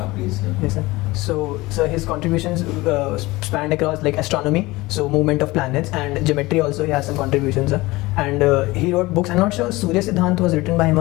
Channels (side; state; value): right; quieter; 20.7 dB